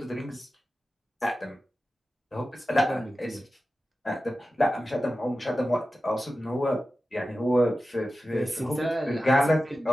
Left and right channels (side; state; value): both; normal; correlation 0.94